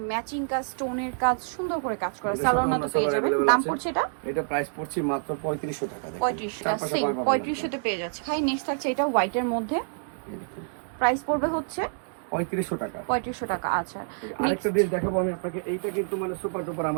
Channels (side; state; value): left; silent; 60 dB below the other